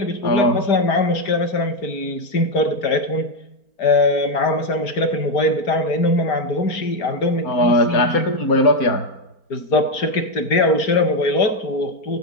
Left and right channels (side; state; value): right; late; 4.4 ms